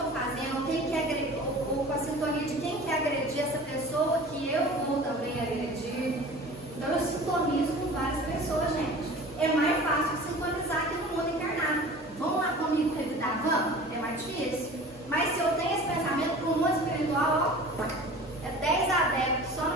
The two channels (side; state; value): both; normal; correlation 0.41